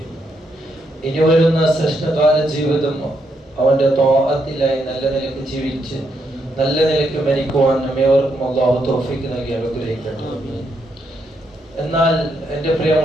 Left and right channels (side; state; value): both; normal; correlation 0.78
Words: ഇനി വരുന്ന ശ്രേഷ്ഠകാല ജീവിതം അവന്റെ ത്വാഅത്തിലായി നല്ല നിലയ്ക്ക് ജീവിച്ച് നല്ല നിലയ്ക്ക് മരിക്കുവാൻ നമ്മേവർക്കും അല്ലാഹു തൗഫീഖ് നൽകി അനുഗ്രഹിക്കട്ടെ. എന്നാൽ എൻ്റെ